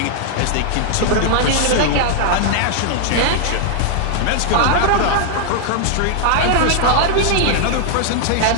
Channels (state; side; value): different; both; correlation -0.01